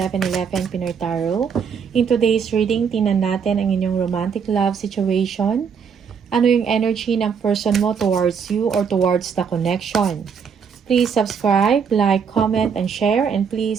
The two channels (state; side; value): quieter; left; 6.6 dB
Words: Pinoy Tarot. In today's reading, tingnan natin ang inyong romantic love situation. Ano yung energy ng person mo towards you or towards the connection? Please subscribe, like, comment, and share. And